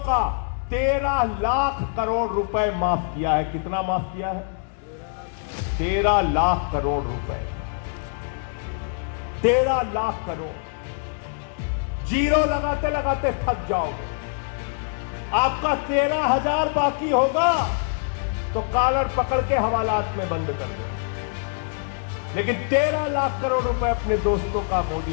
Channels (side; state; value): right; silent; digital silence